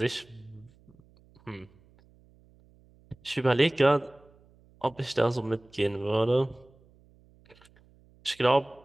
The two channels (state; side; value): noise; right; hum, 29 dB below the sound